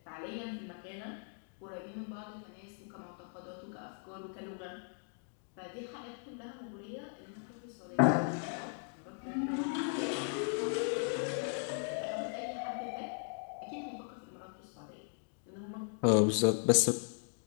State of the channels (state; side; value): silent; right; 53 dB below the other